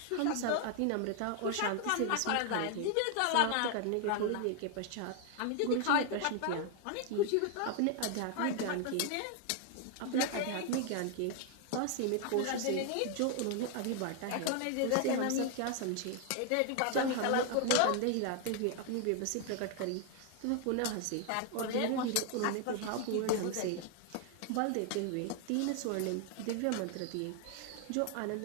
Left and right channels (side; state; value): both; different; correlation 0.00